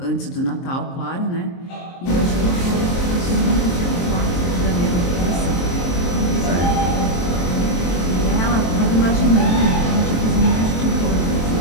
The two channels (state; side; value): late; right; 23 ms